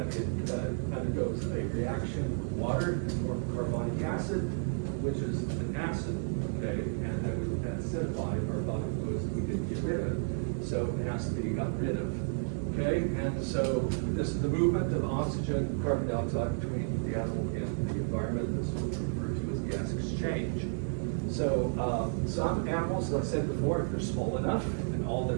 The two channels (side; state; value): left; silent; digital silence